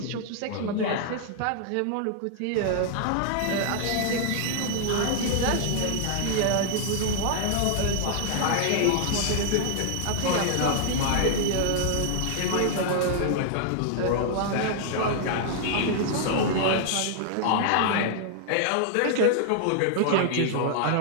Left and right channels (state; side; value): different; both; correlation 0.00